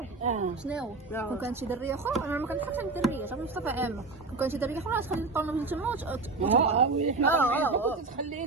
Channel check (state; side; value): quieter; left; 3.7 dB